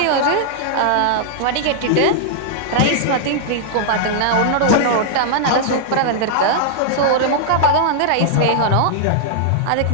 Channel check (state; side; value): different; both; correlation -0.01